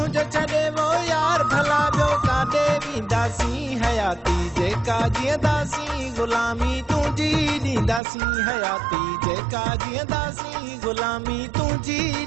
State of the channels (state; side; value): drops out; left; at 8.0 s